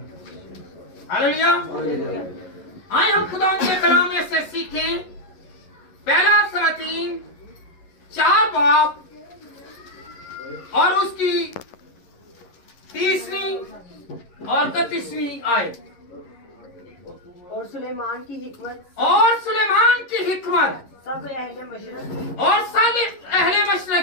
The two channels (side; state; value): right; late; 11 ms